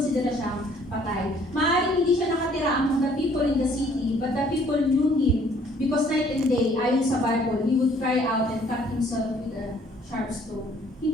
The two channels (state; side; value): normal; both; correlation 0.60